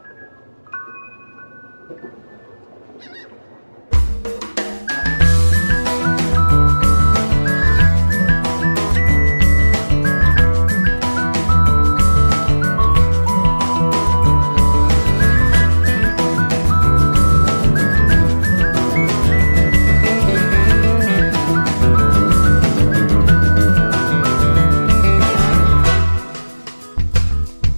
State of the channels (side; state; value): both; inverted; correlation -1.00